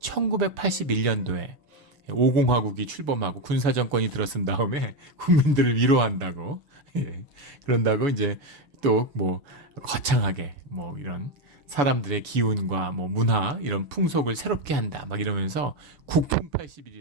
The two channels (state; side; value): late; left; 6.9 ms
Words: 5공화국이 출범하고 군사정권이 들어선 다음에 국민들을 위로한다고, 그런다고 이제 또 거창하게 이런 사람들의 기운과 문화, 이런 풍속을 새롭게 한다 막 이러면서 국풍